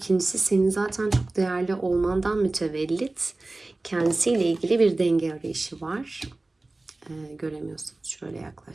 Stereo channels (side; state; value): left; quieter; 3.0 dB